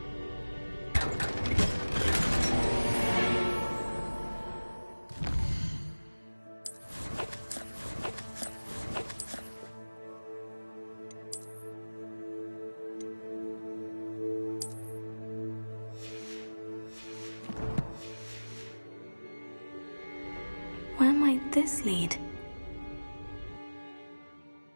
Where might this lead?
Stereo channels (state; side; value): inverted; both; correlation -1.00